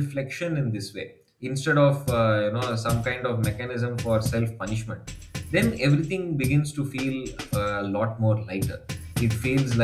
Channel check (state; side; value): identical; both; correlation 1.00